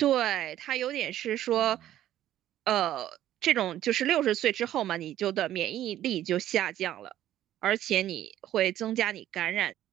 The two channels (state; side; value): quieter; left; 12.6 dB